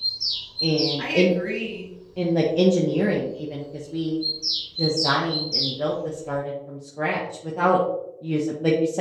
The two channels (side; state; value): both; identical; correlation 1.00